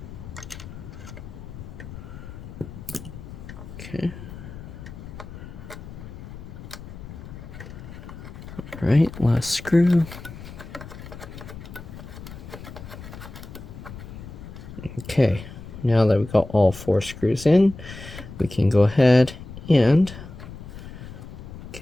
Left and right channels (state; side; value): noise; left; rumble, 13 dB below the sound